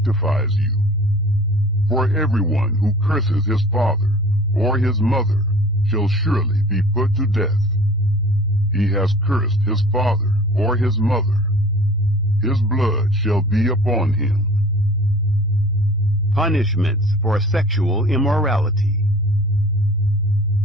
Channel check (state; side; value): normal; both; correlation 0.45